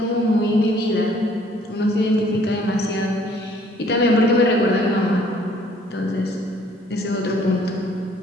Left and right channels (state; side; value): normal; both; correlation 0.60